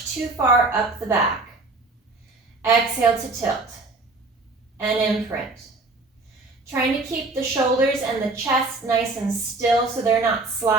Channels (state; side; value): quieter; left; 3.3 dB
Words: too far up the back. Exhale to tilt and imprint. Trying to keep the shoulders and the chest nice and still so they're not